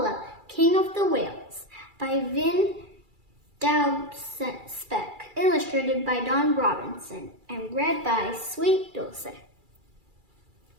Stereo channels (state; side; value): late; left; 2.3 ms